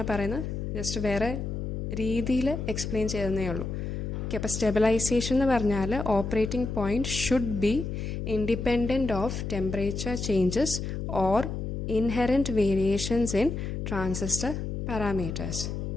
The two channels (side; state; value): left; noise; hum, 4 dB below the sound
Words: പറയുന്നത്, ജസ്റ്റ് വേറെ രീതിയിൽ എക്സ്പ്ലെയിൻ ചെയ്യുന്നേ ഉള്ളൂ. ഓക്കെ, അപ്പോൾ സ്റ്റെബിലൈസേഷൻ എന്ന് പറഞ്ഞാൽ operating point should be independent of temperature changes or inherent variations in transistor parameters.